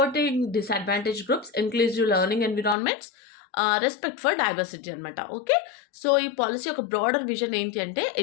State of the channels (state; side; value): drops out; right; at 2.8 s